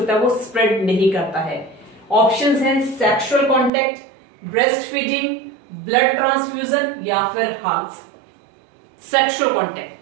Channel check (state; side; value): drops out; left; at 3.7 s